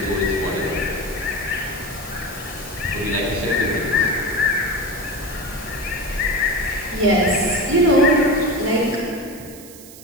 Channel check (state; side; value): noise; right; hiss, 18 dB below the sound